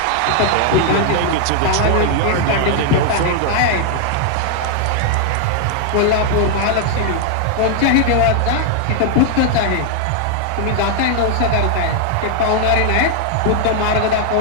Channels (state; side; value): different; both; correlation 0.00